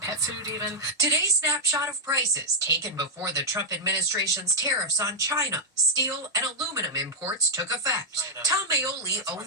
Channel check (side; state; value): both; normal; correlation -0.02